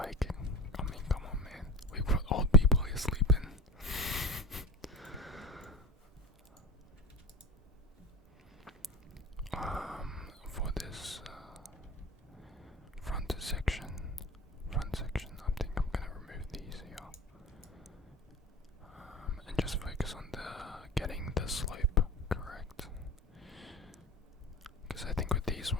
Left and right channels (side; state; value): both; normal; correlation 0.31